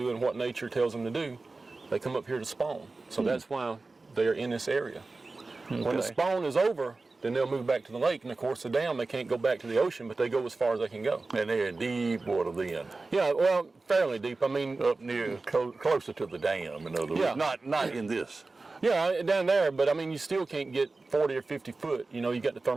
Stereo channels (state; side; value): quieter; left; 3.6 dB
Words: what nature tells them to do. They come up here to spawn. So that's why they're in this area. Okay. When the spawn is over, then they'll move back to the lake, and of course the dam, they can't go back to the ocean, but they go as far as they can go. And they're in deep water then? Yeah, well, fairly deep. I mean, up near, closer to the dam, in other words, not in this. Yeah, down there, but I mean, you still can't get 40 or 50 foot. You got the